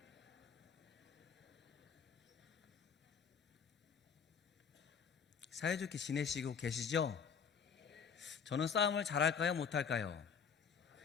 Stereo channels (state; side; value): quieter; right; 6.5 dB